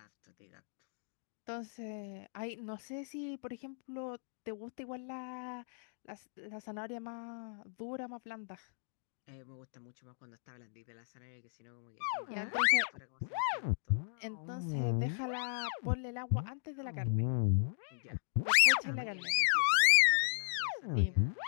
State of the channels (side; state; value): right; silent; digital silence